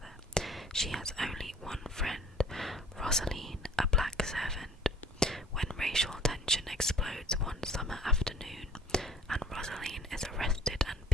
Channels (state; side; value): normal; both; correlation 0.50